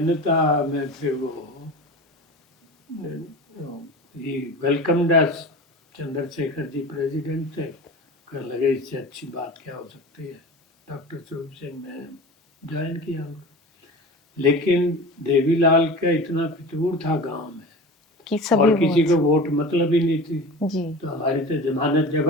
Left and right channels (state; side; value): normal; both; correlation 0.33